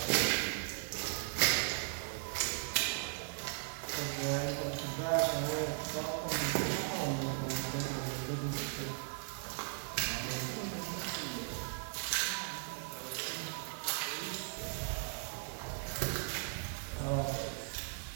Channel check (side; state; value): left; silent; digital silence